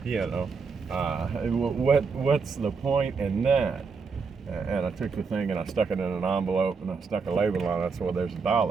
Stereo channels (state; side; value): quieter; left; 5.1 dB